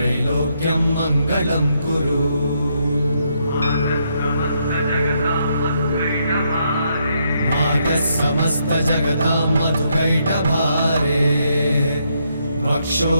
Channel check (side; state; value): both; inverted; correlation -0.77